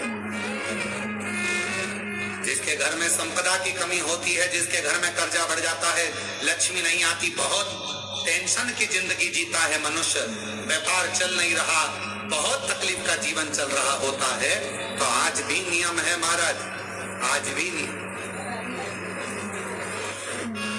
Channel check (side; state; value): both; identical; correlation 1.00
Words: जिसके घर में संपदा की कमी होती है, जिसके घर में कर्जा बढ़ जाता है, लक्ष्मी नहीं आती, बहुत टेंशन की जिंदगी जीता है मनुष्य, व्यापार चल नहीं रहा, बहुत तकलीफ का जीवन चल रहा होता है, तो आज भी नियम है महाराज, आज भी नियम।